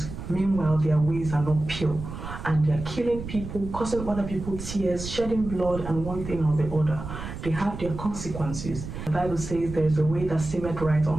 meanwhile their ways are not pure, and they're killing people, causing other people tears, shedding blood, and one thing or the other. They have their consequences. The Bible says there is a way that seemeth right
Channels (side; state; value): right; noise; rumble, 9 dB below the sound